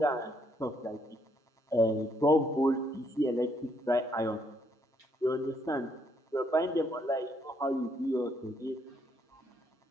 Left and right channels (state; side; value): normal; both; correlation 0.72